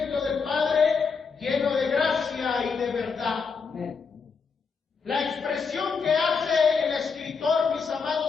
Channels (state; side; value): quieter; right; 5.3 dB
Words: del Padre, lleno de gracia y de verdad. La expresión que hace el escritor, mis